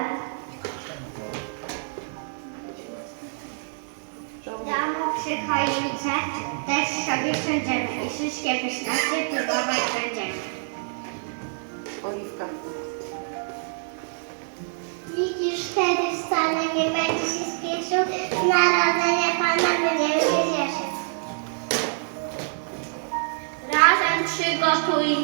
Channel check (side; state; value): left; silent; digital silence